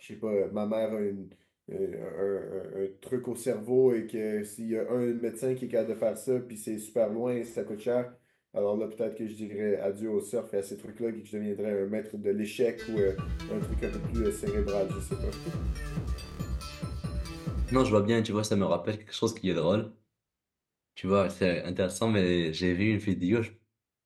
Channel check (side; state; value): both; identical; correlation 1.00